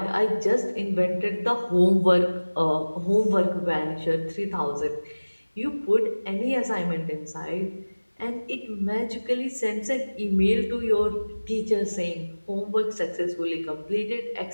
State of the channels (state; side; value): inverted; both; correlation -1.00